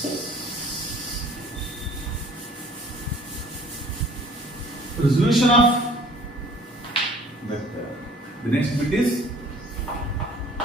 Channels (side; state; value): both; normal; correlation 0.53